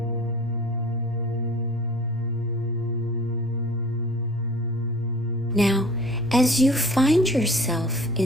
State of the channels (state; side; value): normal; both; correlation 0.44